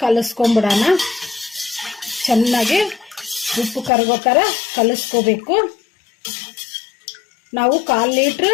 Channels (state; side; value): drops out; right; at 3.9 s